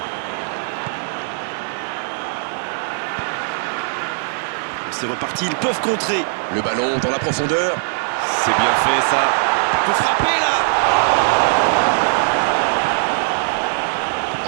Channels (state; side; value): silent; left; digital silence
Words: C'est reparti, ils peuvent contrer. Le ballon dans la profondeur. C'est bien fait ça. Il peut frapper là.